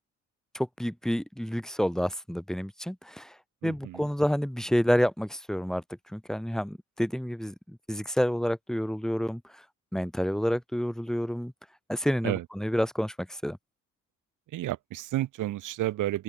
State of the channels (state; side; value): normal; both; correlation 0.87